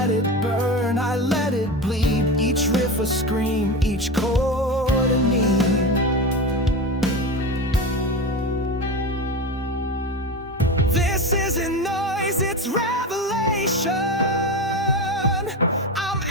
it burn, I let it bleed. Each riff a scream, each chord a need. This isn't noise, it's revelation. I'm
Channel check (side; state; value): both; normal; correlation 0.23